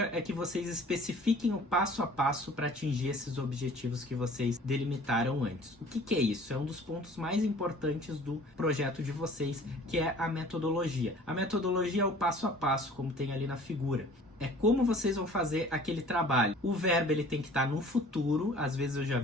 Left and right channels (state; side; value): normal; both; correlation 0.49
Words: é que vocês especifiquem o passo a passo para atingir esses objetivos que vocês delimitaram antes. O que é isso? É um dos pontos mais importantes do projeto de vocês, que é a metodologia. A metodologia é o passo a passo, como tem ali na figura. É como vocês vão fazer aquele trabalho. O verbo ele tem que estar no futuro. Às vezes eu já